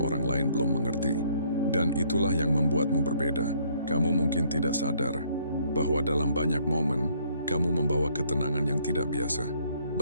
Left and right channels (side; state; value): both; inverted; correlation -0.65